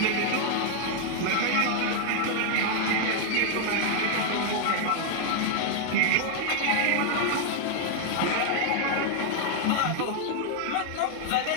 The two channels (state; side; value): different; both; correlation 0.00